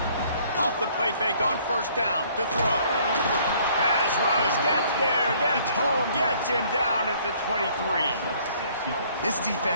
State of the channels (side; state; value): both; inverted; correlation -0.60